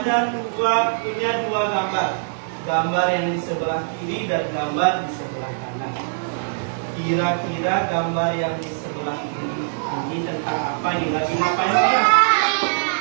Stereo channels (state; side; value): silent; left; digital silence